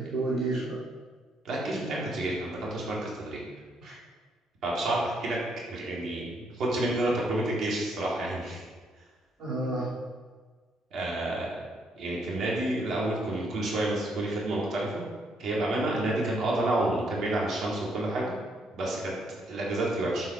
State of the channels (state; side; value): normal; both; correlation 0.73